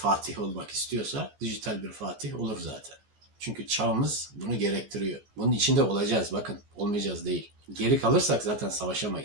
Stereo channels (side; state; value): left; late; 14 ms